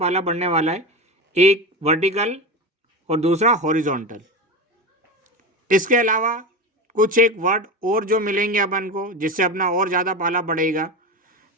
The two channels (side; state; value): both; normal; correlation 0.23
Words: पड़ने वाला है, एक वर्टिकल और दूसरा हॉरिजॉन्टल। इसके अलावा कुछ एक वर्ड और जो मिलेंगे अपन को जिससे अपना और ज़्यादा पाला पड़ेगा,